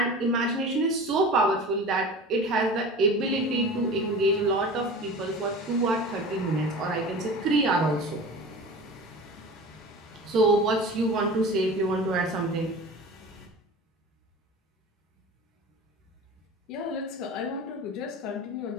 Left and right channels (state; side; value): normal; both; correlation 0.36